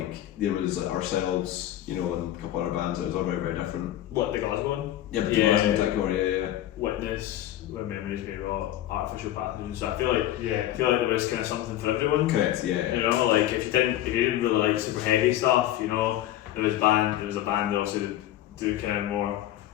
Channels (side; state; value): right; quieter; 13.3 dB